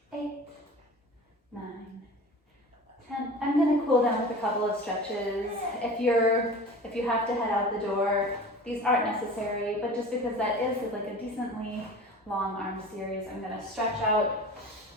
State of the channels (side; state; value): both; normal; correlation 0.37